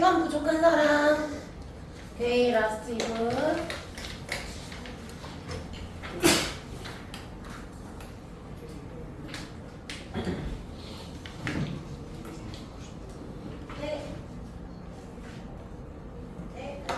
부족한 사람. 오케이, 라스트 2분. 네. 네,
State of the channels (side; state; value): both; identical; correlation 1.00